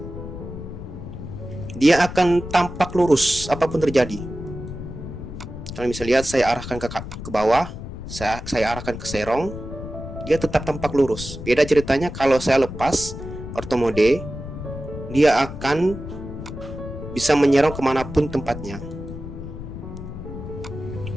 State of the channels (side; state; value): left; noise; rumble, 9 dB below the sound